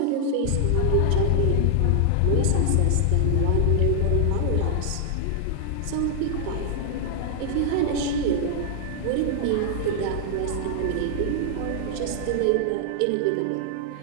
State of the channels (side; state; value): both; different; correlation 0.00